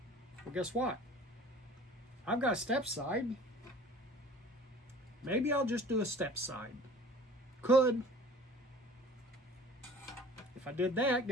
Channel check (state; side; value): normal; both; correlation 0.46